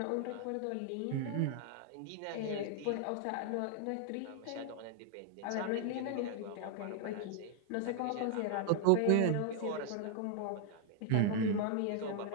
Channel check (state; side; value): different; both; correlation 0.00